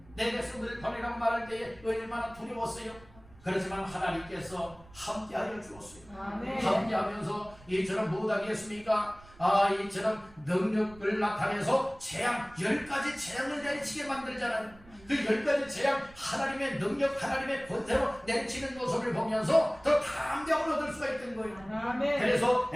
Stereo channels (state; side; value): noise; right; rumble, 23 dB below the sound